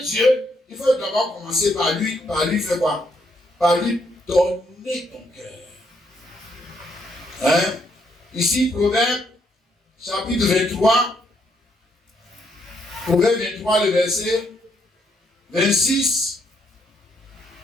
Dieu, il faut d'abord commencer par lui faire quoi? Par lui donner ton cœur. Ici, Proverbe, chapitre 23, Proverbe 23, le verset 26.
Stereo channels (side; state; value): both; normal; correlation 0.74